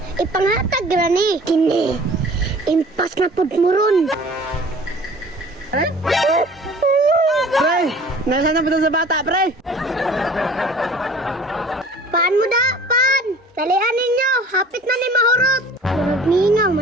ipanghatag ra ni. Kini, impas na pud mo ron. Pre, nasaan na ba sa bata, pre? Paan mo da, pan! Dalian ninyo, hapit na ni mahurot. Murag ningang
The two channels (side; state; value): both; normal; correlation 0.47